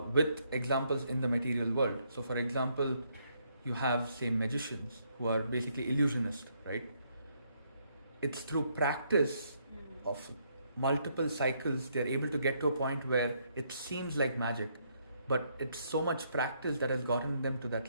examples in the material world. So, for example, you have, say, magicians who are basically illusionists, right? It's through practice of multiple cycles they're able to get to a point where it seems like magic, but it's so much practice that has gotten them to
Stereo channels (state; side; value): inverted; both; correlation -0.72